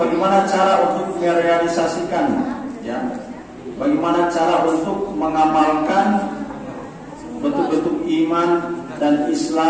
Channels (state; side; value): identical; both; correlation 1.00